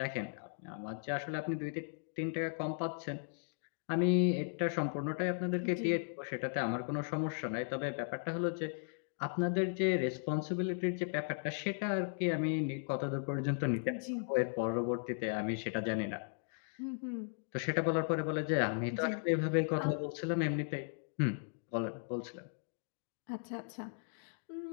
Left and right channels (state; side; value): silent; right; digital silence